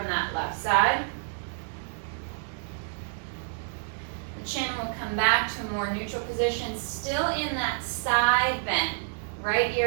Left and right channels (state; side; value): silent; left; digital silence